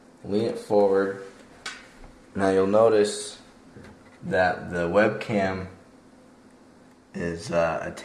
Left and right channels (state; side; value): identical; both; correlation 1.00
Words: lean it forward. Now you'll notice that the webcam is